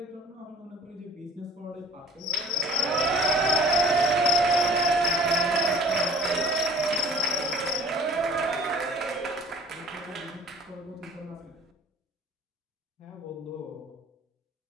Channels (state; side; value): normal; both; correlation 0.48